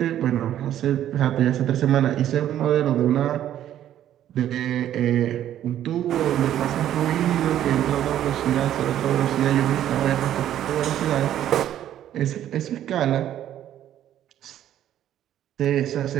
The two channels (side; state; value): left; quieter; 11.5 dB